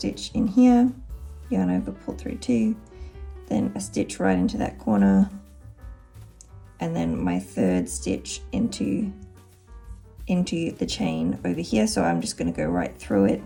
in here, yarn over, pull through 2, then a stitch right into that corner, and then my 3rd stitch into the chain over here. So I'm just going to go right through it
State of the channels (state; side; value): identical; both; correlation 1.00